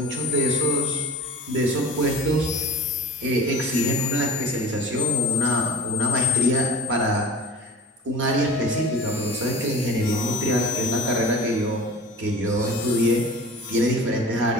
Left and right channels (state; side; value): normal; both; correlation 0.38